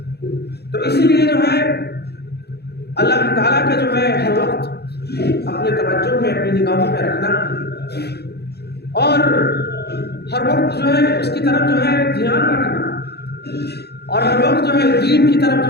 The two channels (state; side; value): late; right; 0.48 ms